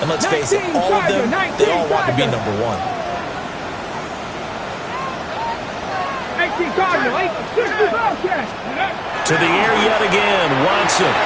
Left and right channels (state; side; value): identical; both; correlation 1.00